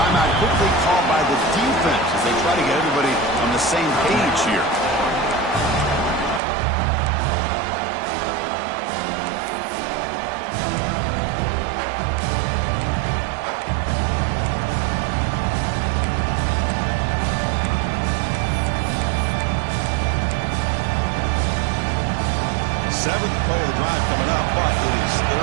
quickly called by the defense as they try to get everybody on the same page here. Seventh play of the drive coming up, but it is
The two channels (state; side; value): drops out; left; at 6.4 s